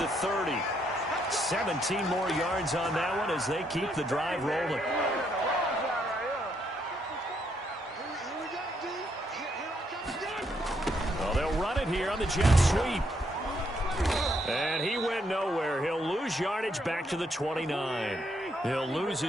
the 30. 17 more yards on that one as they keep the drive rolling. Well, they'll run it here on the jet sweep. And he went nowhere. He'll lose yardage back to the 29. He'll lose a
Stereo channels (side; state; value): both; normal; correlation 0.74